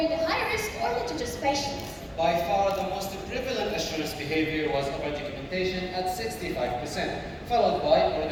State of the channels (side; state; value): both; identical; correlation 1.00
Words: high-risk or litigious patients. By far, the most prevalent assurance behavior was over-documentation at 65%, followed by